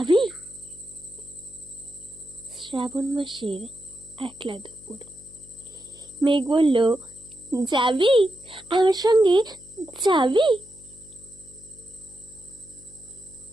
শ্রাবণ মাসের একলা দুপুর। মেঘ বলল, যাবি আমার সঙ্গে? যাবি?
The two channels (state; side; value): noise; left; hum, 24 dB below the sound